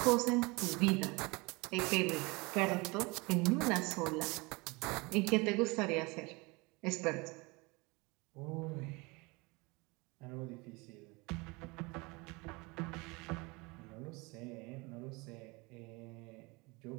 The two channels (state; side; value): quieter; left; 26.0 dB